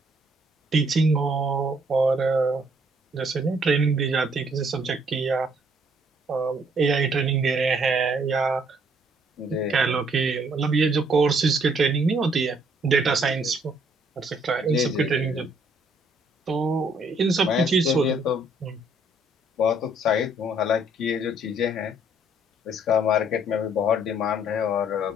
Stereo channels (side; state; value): both; normal; correlation 0.66